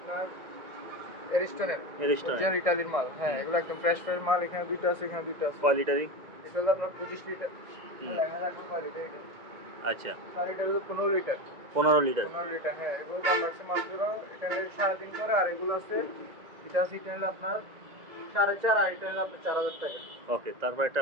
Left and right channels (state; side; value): late; left; 1.9 ms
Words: এরিস্টনের অরিজিনাল ইতালির মাল। হ্যাঁ, এগুলো একদম ফ্রেশ ফ্রেশ মাল। এখানে দুটো আছে, এখানে দুটো আছে। কয় লিটারি? এটা হলো আপনার 25 লিটার। লেখা থাকবে কয় লিটার এটা। আচ্ছা। আর এটা হলো 15 লিটার। 15 লিটার। 15 লিটার। হ্যাঁ, এগুলো দাম রাখছে মাত্র এটা হলো 3.5 করে। আর এগুলো আছে এটা আছে এটা হলো আপনার 4.5 আর এটা হলো আপনার 4,000 টাকা। ওকে। তারপর একটা